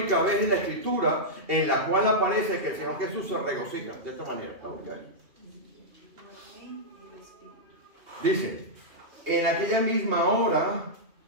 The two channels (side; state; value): left; late; 2.8 ms